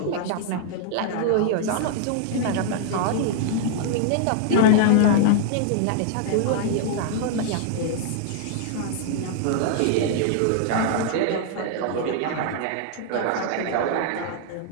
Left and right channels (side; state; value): both; different; correlation -0.01